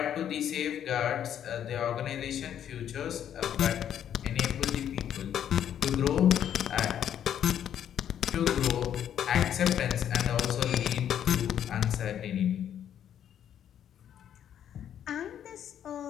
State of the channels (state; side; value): quieter; right; 9.8 dB